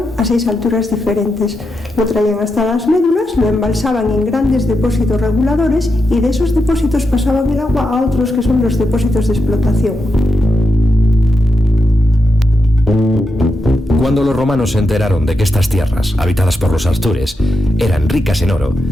a 6 alturas diferentes. Lo traían hasta las médulas, lo embalsaban en grandes depósitos reguladores y de esos depósitos pasaban el agua a otros que son los depósitos de explotación. Cuando los romanos se enteraron de que estas tierras, habitadas por los astures, eran ricas en oro,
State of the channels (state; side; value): normal; both; correlation 0.86